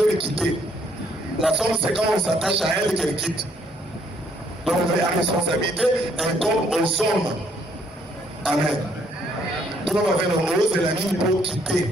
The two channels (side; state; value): both; normal; correlation 0.67